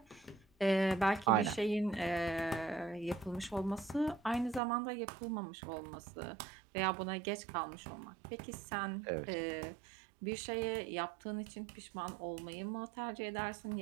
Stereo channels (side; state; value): left; drops out; at 4.6 s